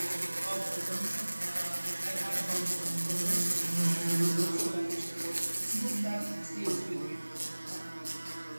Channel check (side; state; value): both; inverted; correlation -1.00